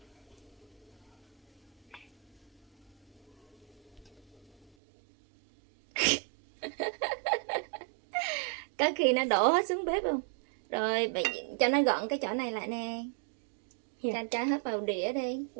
Có khi nó đổ hết xuống bếp không? Rồi bạn cho nó gọn cái chỗ này lại nè. Cho hết vào đĩa đi,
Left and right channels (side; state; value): left; drops out; at 4.7 s